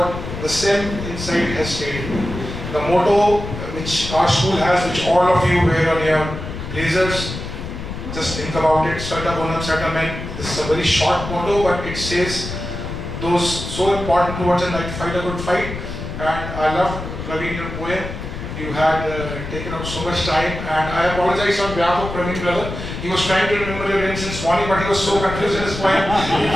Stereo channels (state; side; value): noise; left; rumble, 8 dB below the sound